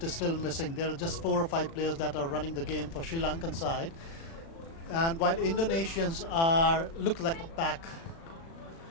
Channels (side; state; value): right; late; 36 ms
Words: is still missing. There are just 4 or 5 players that are running the game for Sri Lankan side. And while Indonesians look like a pack.